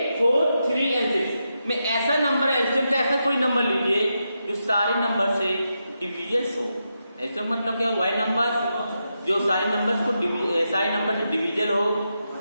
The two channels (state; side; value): inverted; both; correlation -0.86